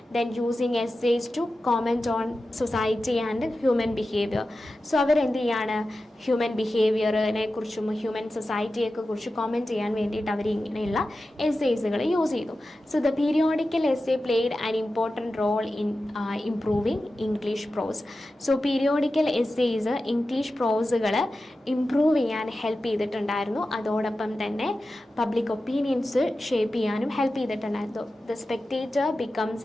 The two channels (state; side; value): normal; both; correlation 0.93